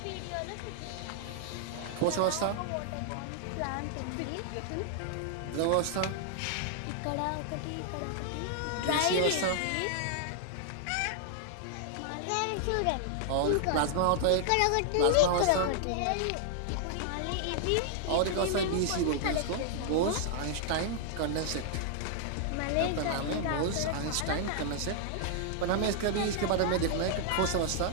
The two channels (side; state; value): both; different; correlation 0.00